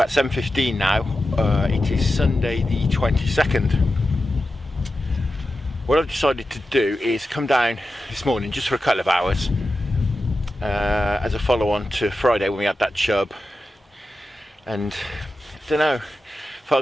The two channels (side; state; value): both; normal; correlation 0.92